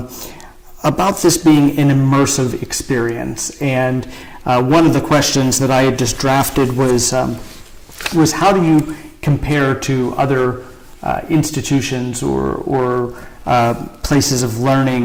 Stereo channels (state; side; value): identical; both; correlation 1.00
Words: this being an immersive experience, and one of the questions that I had just drafted was how do you compare to other institutions or places of